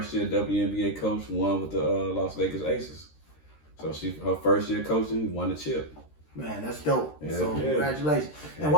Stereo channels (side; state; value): right; late; 13 ms